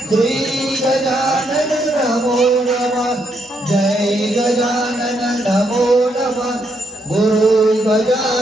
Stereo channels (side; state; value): both; normal; correlation 0.76